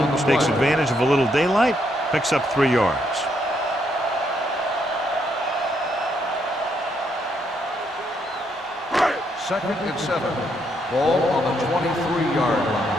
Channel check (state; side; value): normal; both; correlation 0.75